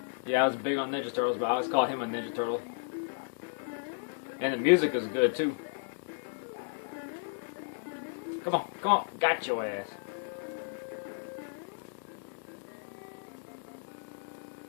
I was big on Ninja Turtles, but I always called him a Ninja Turtle. And the music is good too. Come on, got your ass.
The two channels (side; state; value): right; silent; digital silence